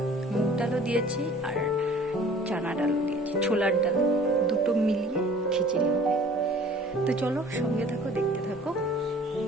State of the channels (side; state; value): both; normal; correlation 0.49